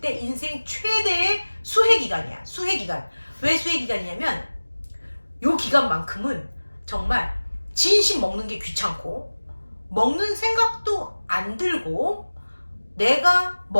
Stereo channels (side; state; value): both; inverted; correlation -1.00